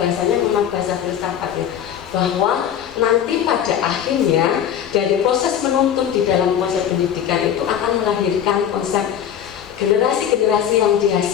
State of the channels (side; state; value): right; quieter; 9.4 dB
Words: memang bahasa filsafat ya, bahwa nanti pada akhirnya dari proses menuntun di dalam konsep pendidikan itu akan melahirkan konsep generasi-generasi yang